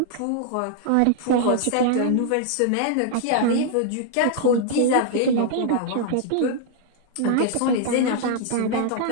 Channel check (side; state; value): both; different; correlation -0.01